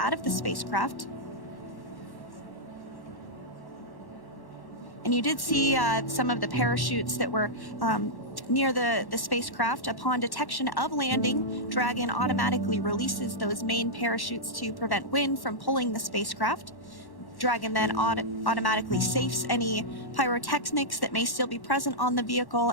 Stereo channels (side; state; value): right; late; 1.1 ms